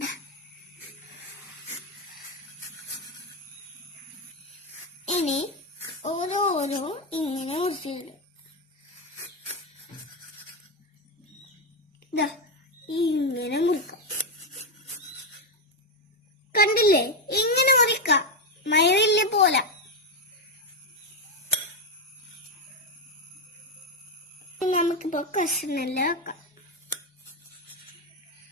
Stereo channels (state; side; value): normal; both; correlation 0.07